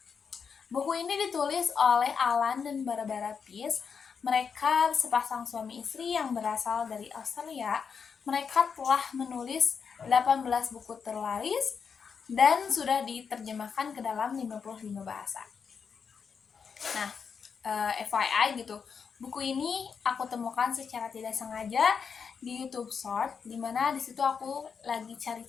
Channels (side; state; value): right; quieter; 6.2 dB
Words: Buku ini ditulis oleh Alan dan Barbara Pease. Mereka sepasang suami istri yang berasal dari Australia. Mereka telah menulis 18 buku terlaris dan sudah diterjemahkan ke dalam 55 bahasa. Nah, FYI gitu, buku ini aku temukan secara tidak sengaja di YouTube Short, dimana disitu aku lagi